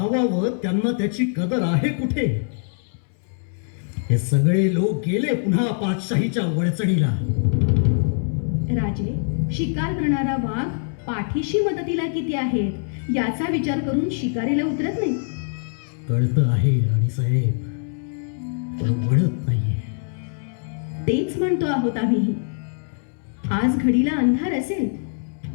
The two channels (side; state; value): right; silent; 63 dB below the other